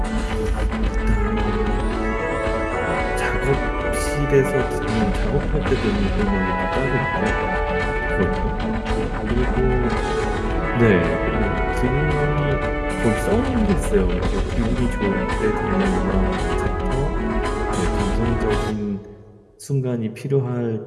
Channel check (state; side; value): identical; both; correlation 1.00